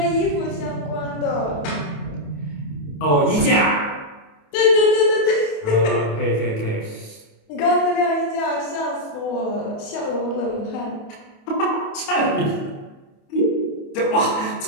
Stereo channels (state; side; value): late; right; 28 ms